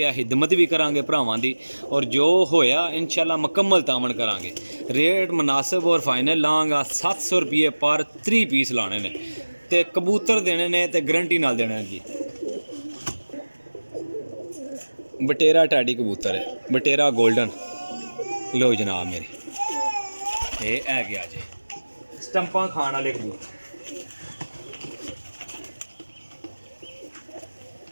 हिदमत भी करांगे भरावां दी, और जो होया इंशाल्लाह मुकम्मल तामन करांगे। रेट मुनासिब और फाइनल लाँगा 700 रुपये पर 3 पीस लाने ने, ते कबूतर देने ने ते गारंटी नाल देने जी। बटेरा टैडी कबूतर है, बटेरा गोल्डन। लो जनाब मेरी ये है गया जी स्टंपा खाने वाले कबूतर।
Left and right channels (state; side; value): inverted; both; correlation -1.00